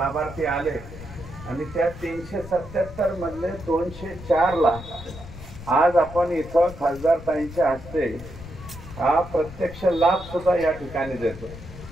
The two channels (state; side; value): noise; left; rumble, 14 dB below the sound